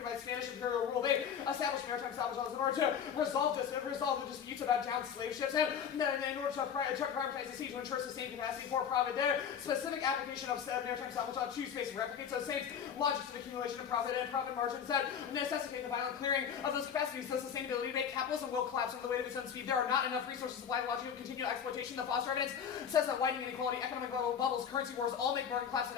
by Spanish imperial rule. They established maritime salvage laws in order to resolve the disputes about downed slave ships and in order to privatize the sea to ensure sustained capacity for profit. Their specific application of maritime salvage law to space replicates those same logics of accumulation of profit and profit margins that necessitate the violent clearing of those capacities. The sustainability to make capitalism will collapse under the weight of its own speed. There are not enough resources to supply the logic of continual exploitation. The Foster evidence says that widening inequality, economic bubbles, currency wars all make market collapse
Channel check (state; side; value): quieter; right; 7.8 dB